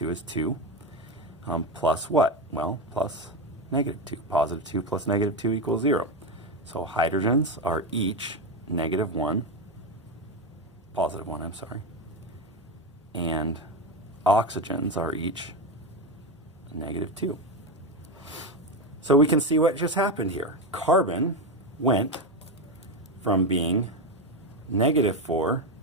is 2. Plus what? Well, plus -2. +2 plus -2 equals 0. So hydrogens are each -1. +1, I'm sorry. And oxygens are each -2. So we can see what just happened here. Carbon went from being -4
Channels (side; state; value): both; normal; correlation 0.14